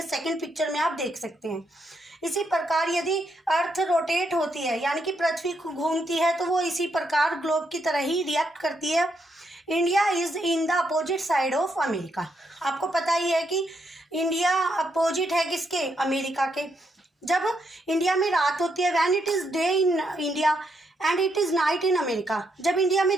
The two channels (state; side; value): normal; both; correlation 0.78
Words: सेकंड पिक्चर में आप देख सकते हैं। इसी प्रकार यदि अर्थ रोटेट होती है, यानी कि पृथ्वी घूमती है, तो वो इसी प्रकार ग्लोब की तरह ही रिएक्ट करती है। India is in the opposite side of America. आपको पता ही है कि इंडिया अपोजिट है किसके? अमेरिका के। जब इंडिया में रात होती है, when it is day in India and it is night in America. जब इंडिया